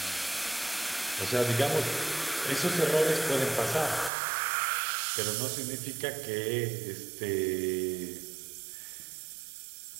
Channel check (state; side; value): drops out; left; at 4.1 s